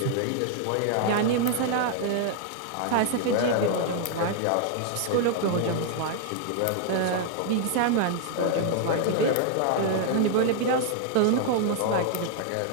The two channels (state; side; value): different; both; correlation 0.00